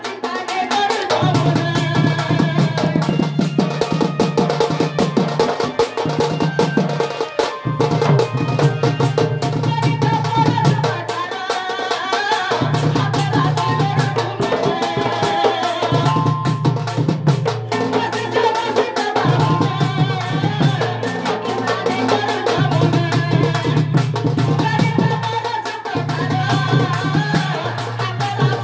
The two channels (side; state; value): both; identical; correlation 1.00